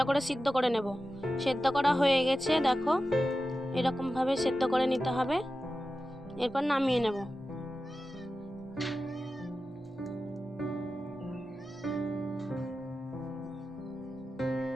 করে সিদ্ধ করে নেব। সেদ্ধ করা হয়ে গেছে, দেখো এরকম ভাবে সেদ্ধ করে নিতে হবে। এরপর নামিয়ে নেব।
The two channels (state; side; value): normal; both; correlation 0.93